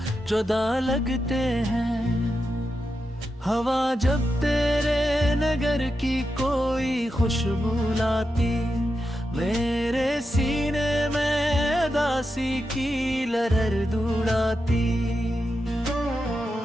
जुदा लगते हैं। हवा जब तेरे नगर की कोई खुशबू लाती, मेरे सीने में उदासी की लहर दौड़ाती।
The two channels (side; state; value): both; normal; correlation 0.88